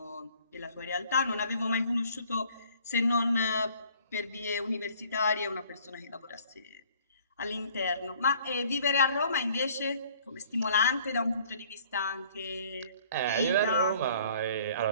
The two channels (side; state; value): both; inverted; correlation -0.56